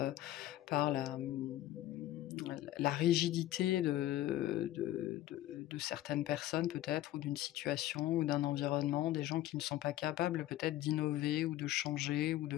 la rigidité de certaines personnes peut-être, ou d'une situation, ou d'un environnement, des gens qui ne sont pas capables peut-être d'innover ou de changer ou de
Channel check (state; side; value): quieter; right; 14.5 dB